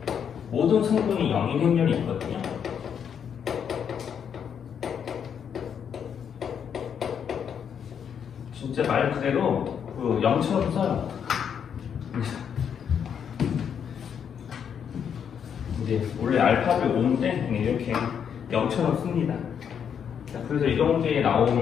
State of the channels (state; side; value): quieter; right; 7.8 dB